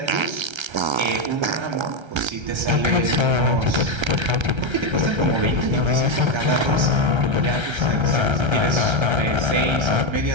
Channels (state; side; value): late; left; 1.3 ms